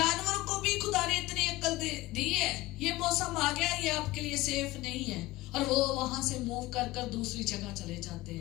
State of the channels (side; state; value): right; quieter; 18.5 dB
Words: को भी खुदा ने इतनी अक्ल दी है, ये मौसम आ गया, ये आपके लिए सेफ नहीं है, और वो वहां से मूव कर दूसरी जगह चले जाते